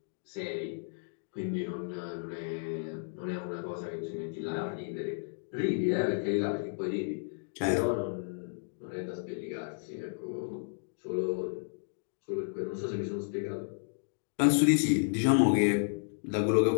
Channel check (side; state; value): right; silent; digital silence